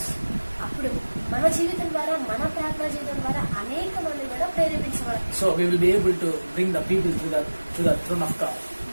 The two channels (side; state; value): both; inverted; correlation -1.00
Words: అప్పుడు మన జీవితం ద్వారా, మన ప్రార్థన జీవితం ద్వారా అనేక మంది కూడా ప్రేరేపించబడతారు. So we will be able to bring the people to the throne of God.